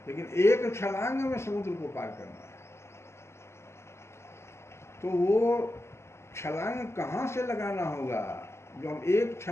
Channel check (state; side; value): late; right; 0.13 ms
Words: लेकिन एक छलांग में समुद्र को पार करना है। तो वो छलांग कहाँ से लगाना होगा, जो हम एक